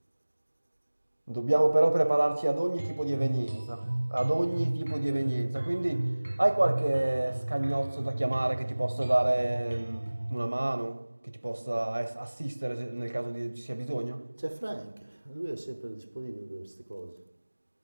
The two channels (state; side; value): inverted; both; correlation -1.00